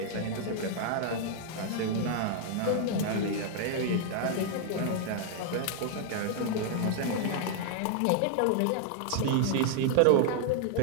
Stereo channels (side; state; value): both; different; correlation 0.00